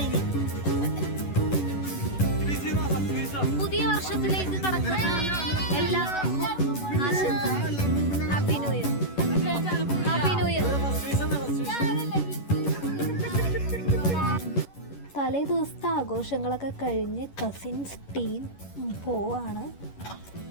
പുതിയ വർഷത്തിലേക്ക് കടക്കുന്ന എല്ലാവർക്കും ആശംസകൾ. Happy new year. Happy new year. തലേ ദിവസത്തെ ആഘോഷങ്ങളൊക്കെ കഴിഞ്ഞ് കസിൻസ് ടീം പോവാണ്.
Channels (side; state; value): right; late; 11 ms